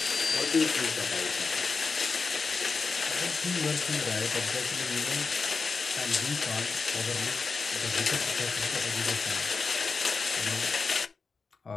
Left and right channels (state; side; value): quieter; right; 4.6 dB